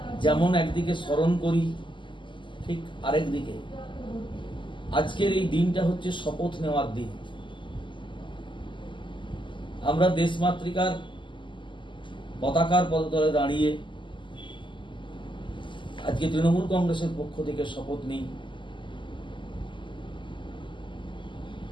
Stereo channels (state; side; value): late; right; 0.24 ms